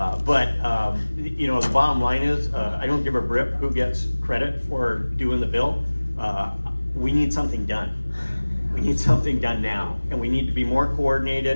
the bottom line is, I don't give a rip who gets credit for doing the bill. We need something done. We need something done now, and we need to be more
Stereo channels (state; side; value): inverted; both; correlation -1.00